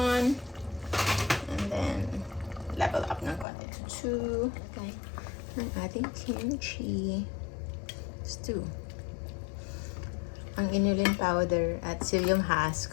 and then level up ng konti to 2. Okay. Ang ating kimchi. It's 2. Ang inulin powder at psyllium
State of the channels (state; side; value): drops out; right; at 3.5 s